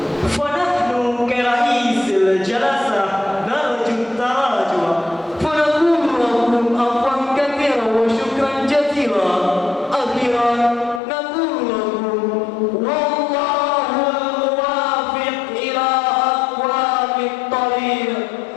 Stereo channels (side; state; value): right; drops out; at 11.0 s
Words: Fanahnu keraisil jalasah narju tarajwa. Fanaqulu lakum afwan katsira wa syukran jazila. Akhiran naqulu lakum wallahu muwaffiq ila aqwamit thariq.